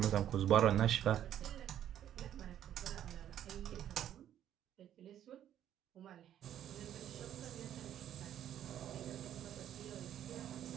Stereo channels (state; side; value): quieter; left; 10.9 dB